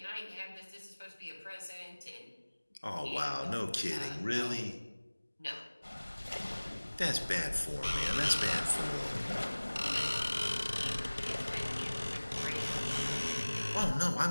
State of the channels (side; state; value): both; inverted; correlation -1.00